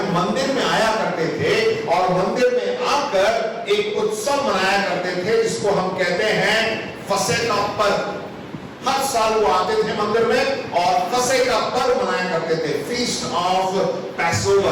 मंदिर में आया करते थे और मंदिर में आकर एक उत्सव मनाया करते थे जिसको हम कहते हैं फसह का पर्व। हर साल वो आते थे मंदिर में और फसह का पर्व मनाया करते थे, फीस्ट ऑफ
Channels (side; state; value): both; identical; correlation 1.00